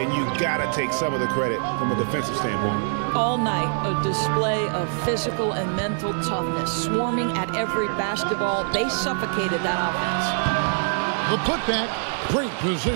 you got to take some of the credit from a defensive standpoint. All night, a display of physical and mental toughness. Swarming at every basketball. They suffocated that offense. The putback, great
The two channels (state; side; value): silent; left; digital silence